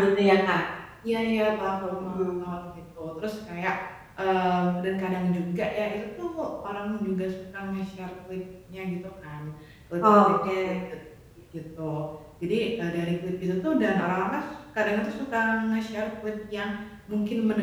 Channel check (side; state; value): both; identical; correlation 1.00